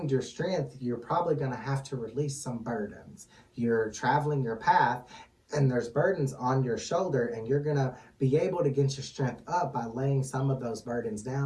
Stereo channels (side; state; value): both; identical; correlation 1.00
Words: your strength, you're probably going to have to release some burdens. You're traveling your path, and there's burdens on your shoulder, and you're going to be able to get your strength up by laying some of those burdens